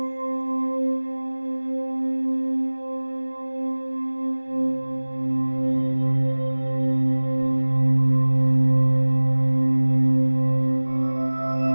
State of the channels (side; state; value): both; inverted; correlation -1.00